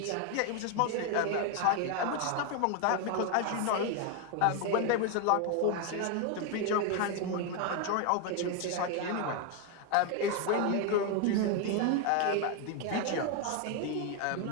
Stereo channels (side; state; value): both; different; correlation 0.01